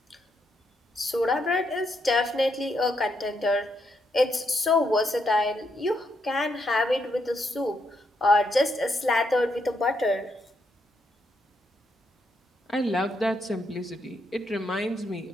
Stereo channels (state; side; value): normal; both; correlation 0.78